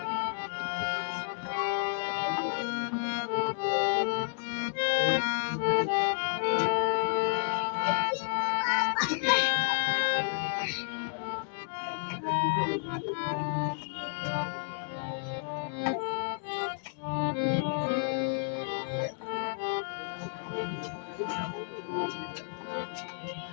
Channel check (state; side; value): silent; right; 57 dB below the other